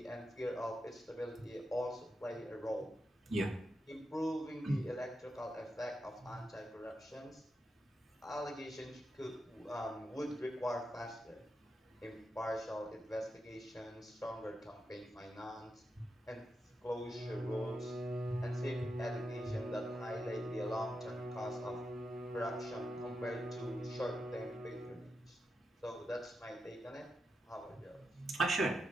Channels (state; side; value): normal; both; correlation 0.86